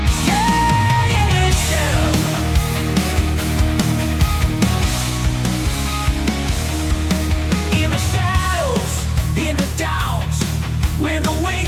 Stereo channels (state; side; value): identical; both; correlation 1.00